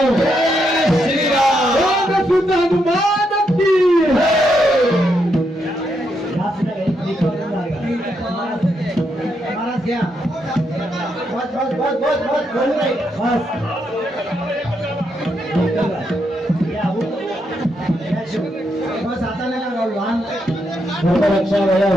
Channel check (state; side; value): normal; both; correlation 0.80